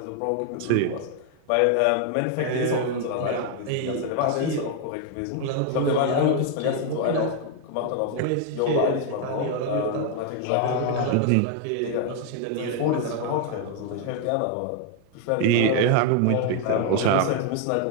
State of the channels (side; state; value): both; different; correlation 0.00